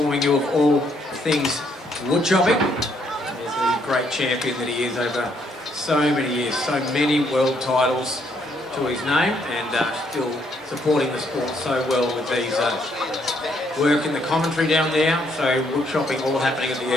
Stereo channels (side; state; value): both; normal; correlation 0.71